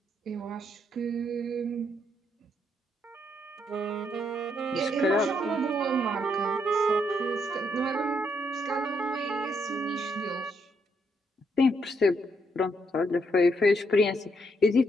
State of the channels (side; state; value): both; normal; correlation 0.75